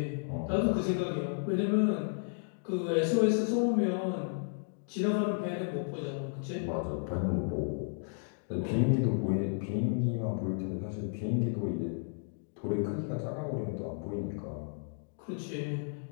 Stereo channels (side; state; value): right; silent; digital silence